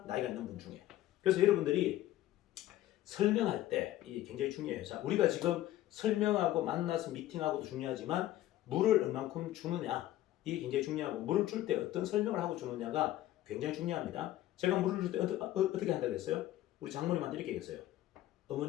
나이가 있는 분 중에. 그래서 여러분들이 설명할 때 이게 굉장히 중요해요. 자, 우리가 지금 설명하고 만나서 미팅하고도 중요하지만 물을 얼만큼 주느냐 이게 굉장히 중요하고 물을 줄 때 어떤 설명을 하고 주느냐가 굉장히 중요합니다. 제가 물을 줄 때 어떻게 한다고 했어요? 우리 장모님한테 이렇게 얘기했어요.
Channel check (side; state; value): right; quieter; 14.3 dB